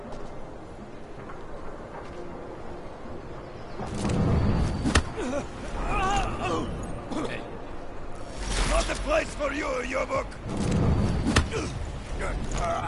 Not the place for you, Yobuk!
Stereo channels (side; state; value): both; identical; correlation 1.00